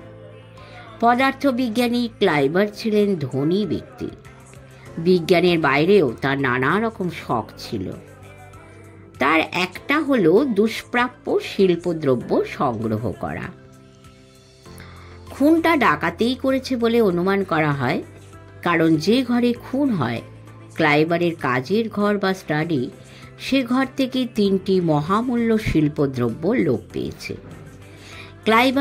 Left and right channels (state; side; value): identical; both; correlation 1.00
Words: পদার্থবিজ্ঞানী ক্লাইবার ছিলেন ধনী ব্যক্তি। বিজ্ঞানের বাইরেও তার নানা রকম শখ ছিল। তার একটা হলো দুষ্প্রাপ্য শিল্পদ্রব্য সংগ্রহ করা। খুনটা ডাকাতেই করেছে বলে অনুমান করা হয়, কারণ যে ঘরে খুন হয়, ক্লাইবারের কাজের ঘর বা স্টাডি, সে ঘর থেকে 3টি মহামূল্য শিল্পদ্রব্য লোপ পেয়েছে।